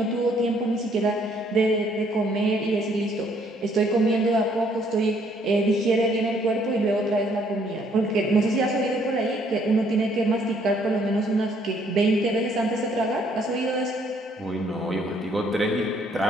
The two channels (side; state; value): both; normal; correlation 0.65